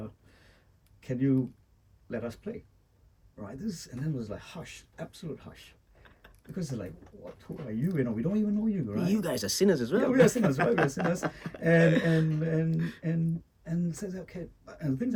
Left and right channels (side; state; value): both; identical; correlation 1.00